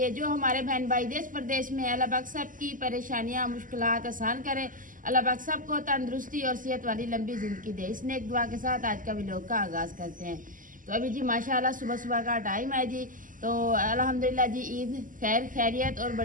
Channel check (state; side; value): late; left; 0.38 ms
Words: जो हमारे बहन भाई देश प्रदेश में, अल्लाह पाक सबकी परेशानियाँ मुश्किलात आसान करे। अल्लाह पाक सबको तंदुरुस्ती और सेहत वाली लंबी ज़िंदगी दे। इस नेक दुआ के साथ आज का व्लॉग का आगाज़ करते हैं। तो अभी जी माशाल्लाह सुबह सुबह का टाइम है जी। तो अल्हम्दुलिल्लाह जी ईद खैर खैरियत और